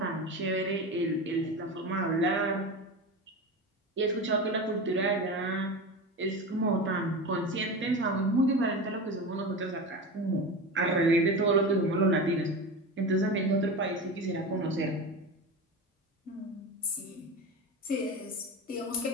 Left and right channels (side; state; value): both; normal; correlation 0.26